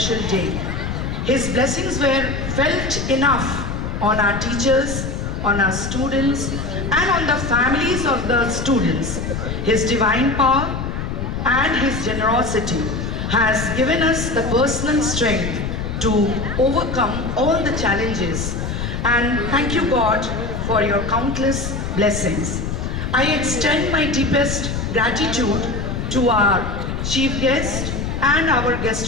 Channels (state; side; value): noise; left; rumble, 4 dB below the sound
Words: day. His blessings were felt enough on our teachers, on our students, and on the families of the students. His divine power and His generosity has given us the personal strength to overcome all the challenges. And thank you, God, for your countless blessings. I extend my deepest gratitude to our chief guest and our